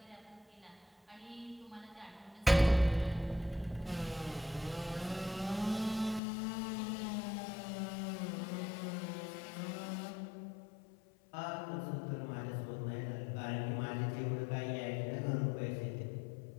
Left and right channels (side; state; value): right; drops out; at 6.2 s